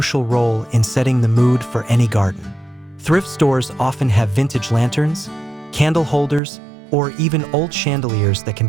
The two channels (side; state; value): left; drops out; at 6.4 s